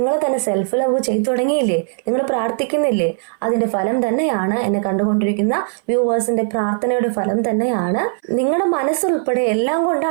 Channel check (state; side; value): silent; left; 59 dB below the other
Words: തന്നെ സെൽഫ് ലവ് ചെയ്തു തുടങ്ങിയില്ലേ, നിങ്ങൾ പ്രാർത്ഥിക്കുന്നില്ലേ, അതിന്റെ ഫലം തന്നെയാണ് എന്നെ കണ്ടുകൊണ്ടിരിക്കുന്ന വ്യൂവേഴ്സിന്റെ പ്രാർത്ഥനയുടെ ഫലം തന്നെയാണ്. നിങ്ങളുടെ മനസ്സുൾപ്പെടെ എല്ലാം